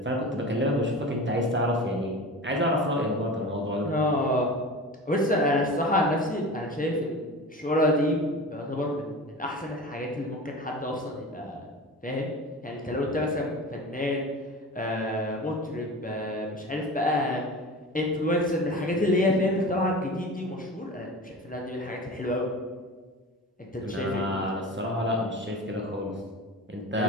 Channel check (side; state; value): both; normal; correlation 0.33